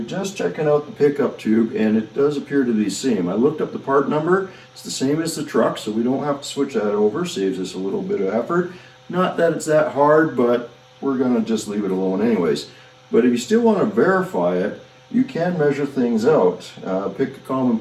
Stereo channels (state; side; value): identical; both; correlation 1.00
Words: just checking out the pickup tube, and it does appear to be the same. I looked up the part number. It's the same as the truck, so we don't have to switch that over. Saves us a little bit of effort. Not that it's that hard, but we're going to just leave it alone anyways. But if you still want to verify it, you can measure things out. Pick a common